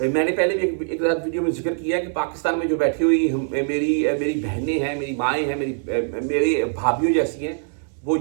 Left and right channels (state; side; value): silent; left; 64 dB below the other